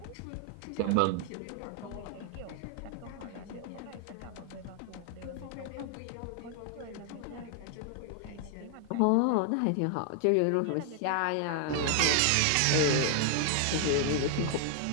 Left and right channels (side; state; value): both; different; correlation 0.00